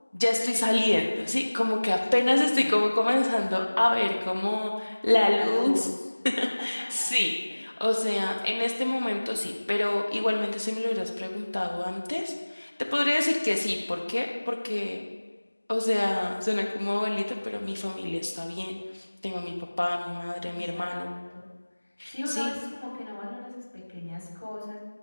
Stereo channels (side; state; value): both; inverted; correlation -1.00